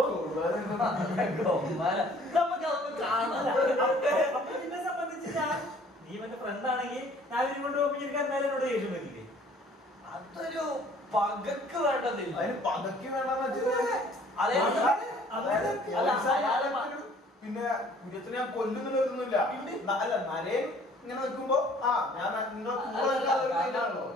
എന്നെ സംബന്ധിച്ച് നീ എന്റെ ഫ്രണ്ട് ആണെങ്കിൽ ഞാൻ ഇവരും കൊണ്ട് പോകുമ്പോൾ എനിക്ക് എന്തായാലും എന്നോട് ദേഷ്യം പറ്റില്ലേ? അതൊരു പകക്ക് വേണ്ടതില്ല. പകക്ക് വേണ്ടെന്ന് പിന്നെ കുര്യത്തിനെ ഞാൻ കൊല്ലുന്നില്ല. അല്ല നരേൻ ഇങ്ങനെ നിൽക്കുമ്പോ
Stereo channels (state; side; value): normal; both; correlation 0.55